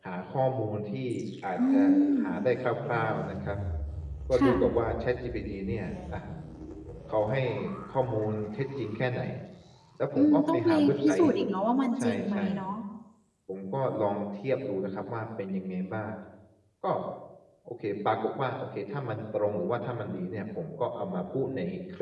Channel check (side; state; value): both; identical; correlation 1.00